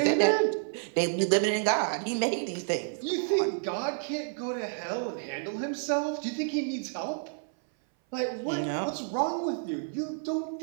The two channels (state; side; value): silent; left; 58 dB below the other